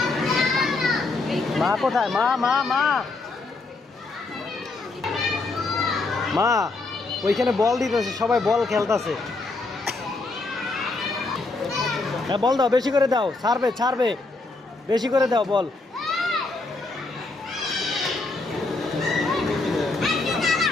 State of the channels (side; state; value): right; quieter; 3.5 dB